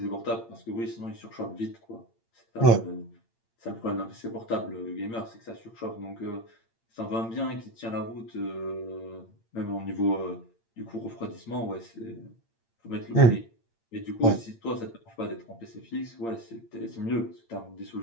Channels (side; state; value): right; late; 8.7 ms